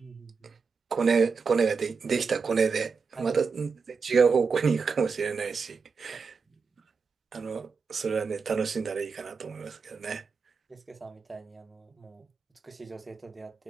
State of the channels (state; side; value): quieter; left; 5.2 dB